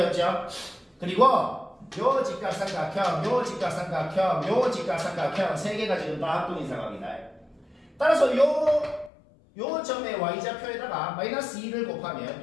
그리고 요 직각삼각형, 요 직각삼각형, 요 직각삼각형 3개가 지금 다 합동인 상황이다. 따라서 요 점의 y좌표에다가 마이너스 2를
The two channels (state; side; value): drops out; right; at 9.1 s